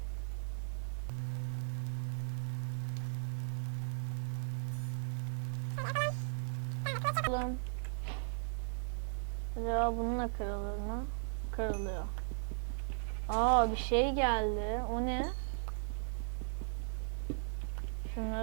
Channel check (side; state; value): left; silent; digital silence